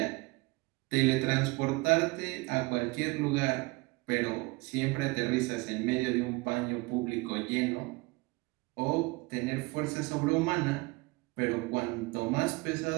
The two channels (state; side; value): quieter; left; 24.9 dB